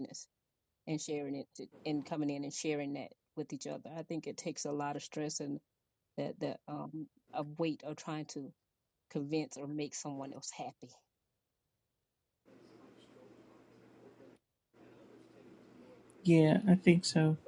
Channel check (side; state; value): both; identical; correlation 1.00